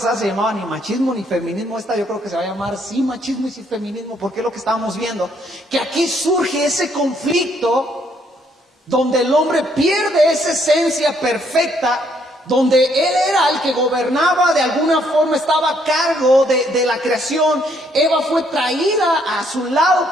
se llamaba ni machismo ni feminismo. Esta yo creo que se va a llamar sí machismo y sí feminismo, porque es lo que estábamos viendo. Que aquí surge ese conflicto donde el hombre pierde esa esencia perfecta, donde él era el que gobernaba, de alguna forma estaba a cargo de la creación. Eva fue traída a su lado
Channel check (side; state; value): both; normal; correlation 0.69